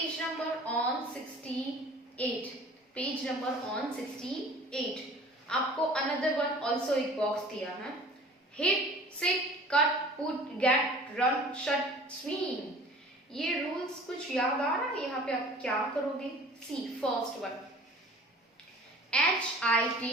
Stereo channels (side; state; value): both; normal; correlation 0.46